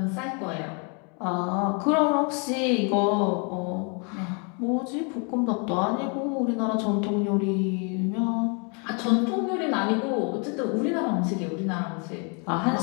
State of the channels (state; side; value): quieter; right; 36.2 dB